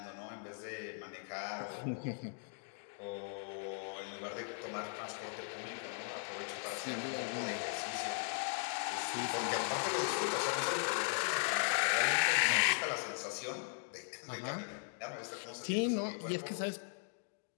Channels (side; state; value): right; silent; 52 dB below the other